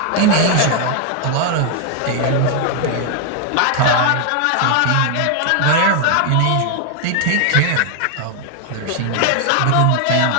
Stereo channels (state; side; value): different; both; correlation 0.00